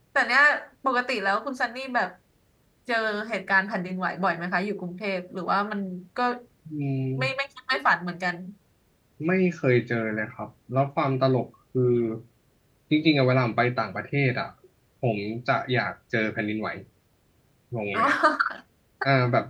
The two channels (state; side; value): identical; both; correlation 1.00